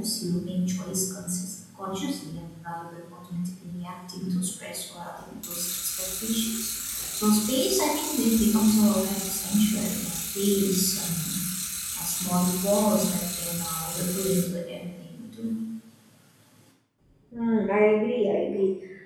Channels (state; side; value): identical; both; correlation 1.00